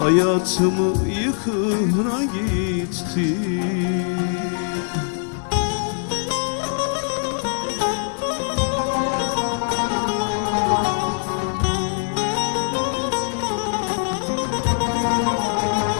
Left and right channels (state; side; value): silent; right; digital silence